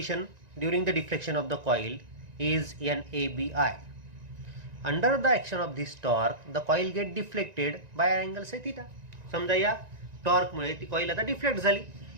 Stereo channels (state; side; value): late; left; 1.9 ms